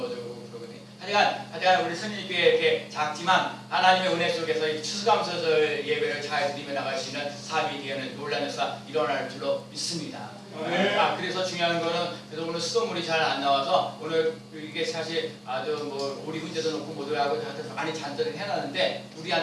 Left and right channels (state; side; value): identical; both; correlation 1.00